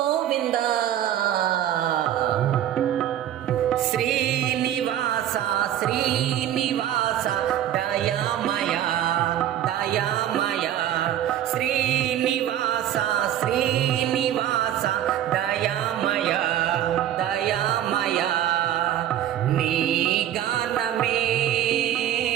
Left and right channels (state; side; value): quieter; left; 11.4 dB